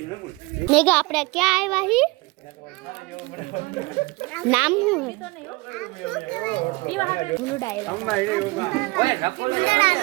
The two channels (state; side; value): quieter; left; 24.6 dB